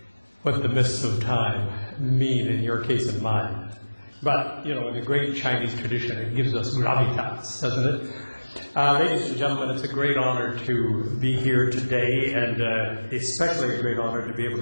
what the mists of time mean in your case and mine. But, you know, in the great Chinese tradition, it gives us gravitas, doesn't it? Ladies and gentlemen, it's a great honor to be here today, and especially a great honor to be able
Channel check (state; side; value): inverted; both; correlation -1.00